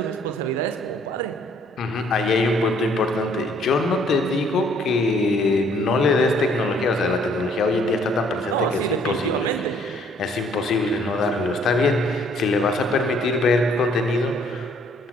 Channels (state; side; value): normal; both; correlation 0.62